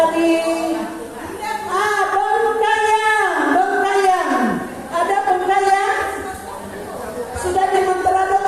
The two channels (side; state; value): both; identical; correlation 1.00